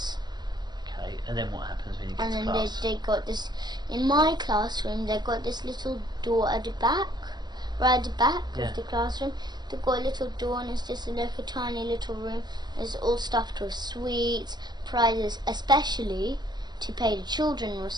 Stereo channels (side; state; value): left; late; 0.20 ms